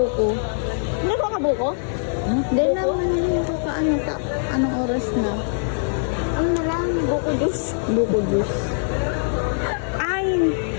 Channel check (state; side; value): silent; right; digital silence